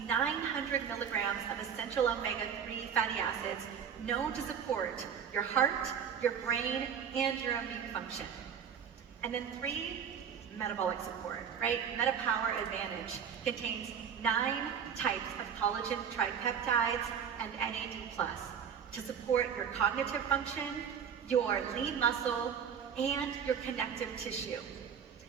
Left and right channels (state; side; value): quieter; left; 7.6 dB